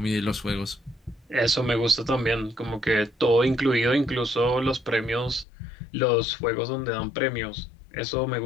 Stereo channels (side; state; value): right; drops out; at 5.5 s